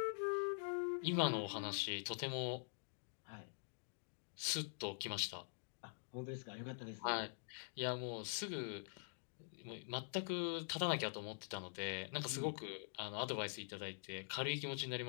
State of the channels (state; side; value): silent; right; digital silence